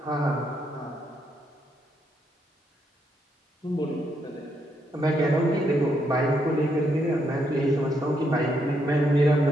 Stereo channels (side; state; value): both; normal; correlation 0.77